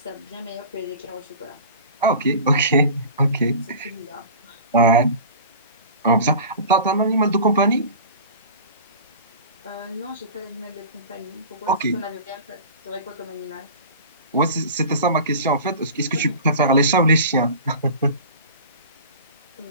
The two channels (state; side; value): inverted; both; correlation -0.37